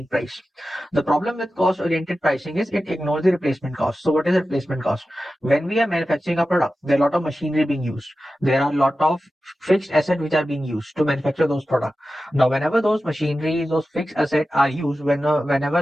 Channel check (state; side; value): normal; both; correlation 0.93